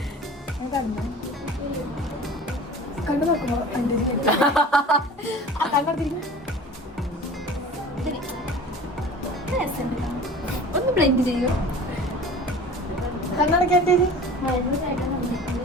കണ്ടു നോക്കുമ്പോ ഒന്ന് ബ്ലെൻഡ് ചെയ്യോ.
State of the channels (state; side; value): normal; both; correlation 0.40